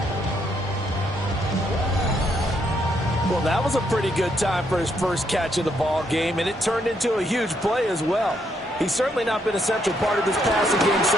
Well, that was a pretty good time for his first catch of the ball game, and it turned into a huge play as well. He's certainly not been a central part of this passing game so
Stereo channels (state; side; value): normal; both; correlation 0.74